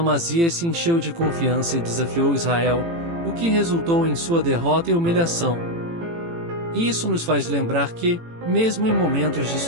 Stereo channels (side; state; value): left; late; 18 ms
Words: se encheu de confiança e desafiou Israel, o que resultou em sua derrota e humilhação. Isso nos faz lembrar que, mesmo em momentos de